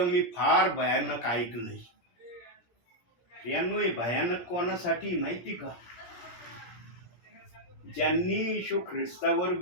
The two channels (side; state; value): right; late; 17 ms